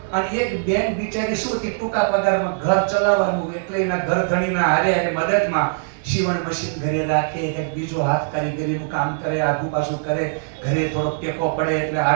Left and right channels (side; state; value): left; silent; 65 dB below the other